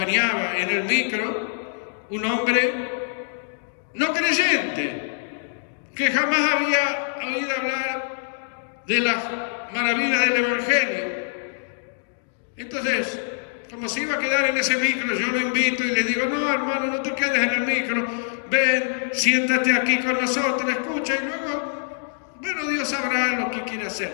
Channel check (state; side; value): silent; right; digital silence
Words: en el micro un hombre no creyente, que jamás había oído hablar de las maravillas del Evangelio. Entonces, como se iba a quedar en ese micro, yo lo invito y le digo, no, hermano, no te quedes en el micro, ven, siéntate aquí con nosotros, escucha, y luego, bueno, Dios sabrá lo que quiere